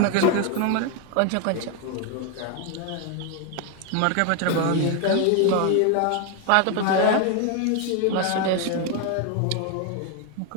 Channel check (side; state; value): both; different; correlation 0.01